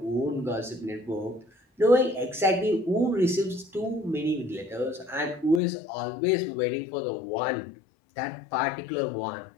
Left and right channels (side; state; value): right; drops out; at 5.6 s